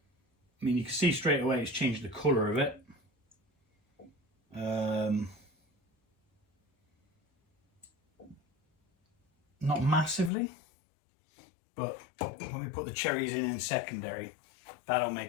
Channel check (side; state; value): right; drops out; at 10.3 s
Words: mean, you can see straight away it's changed the colour of it. Not massively, but when we put the cherries in secondary, that'll